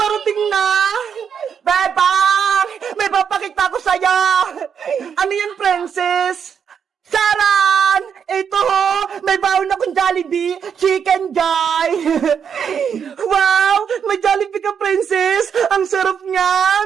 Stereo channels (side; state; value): left; quieter; 7.4 dB